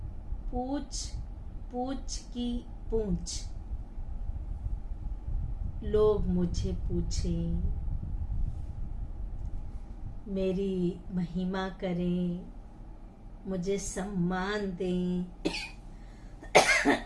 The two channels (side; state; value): both; identical; correlation 1.00